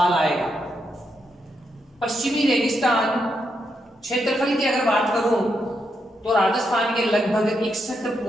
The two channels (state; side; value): normal; both; correlation 0.81